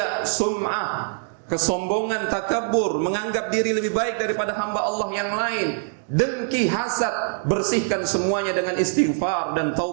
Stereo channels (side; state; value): left; silent; digital silence